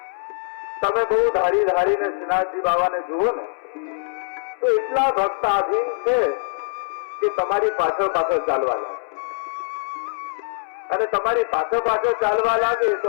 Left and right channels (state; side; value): silent; right; 64 dB below the other